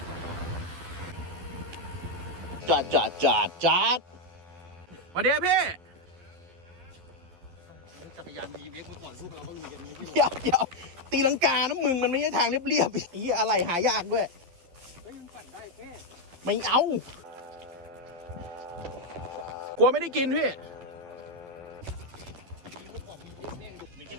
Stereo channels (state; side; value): late; left; 12 ms